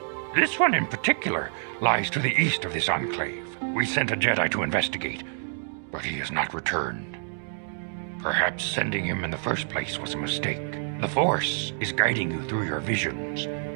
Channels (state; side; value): silent; left; digital silence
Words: This one in particular lies to the east of this enclave. We sent a Jedi to investigate, but he has not returned. Perhaps sending him in the first place was a mistake. The Force is guiding you through your visions.